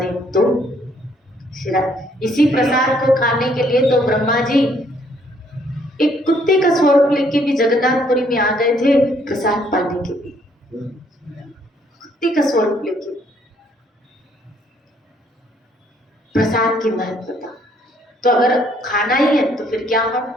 तो इसी प्रसाद को खाने के लिए तो ब्रह्मा जी एक कुत्ते का स्वरूप लेके भी जगन्नाथपुरी में आ गए थे प्रसाद पाने के लिए, कुत्ते का स्वरूप लेके। प्रसाद की महत्वता तो अगर खाना ही है तो फिर क्या हो,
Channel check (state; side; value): normal; both; correlation 0.66